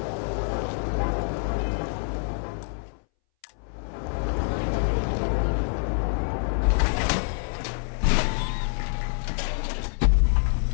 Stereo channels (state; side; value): silent; right; 61 dB below the other